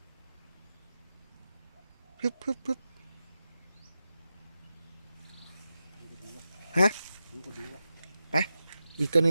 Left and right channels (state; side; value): inverted; both; correlation -0.91